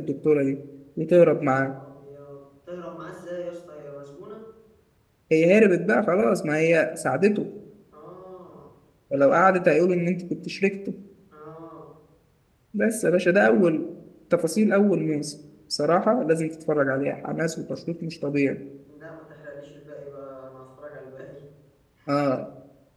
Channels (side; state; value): both; identical; correlation 1.00